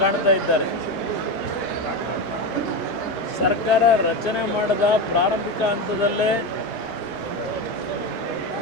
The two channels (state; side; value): normal; both; correlation 0.17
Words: ಕಾಣ್ತಾ ಇದ್ದಾರೆ. ಸರ್ಕಾರ ರಚನೆ ಮಾಡಿದ ಪ್ರಾರಂಭಿಕ ಹಂತದಲ್ಲೇ